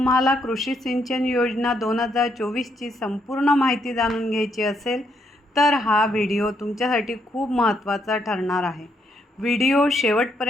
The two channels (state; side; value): normal; both; correlation 0.75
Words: कृषी सिंचन योजना 2024ची संपूर्ण माहिती जाणून घ्यायची असेल तर हा व्हिडिओ तुमच्यासाठी खूप महत्त्वाचा ठरणार आहे। व्हिडिओ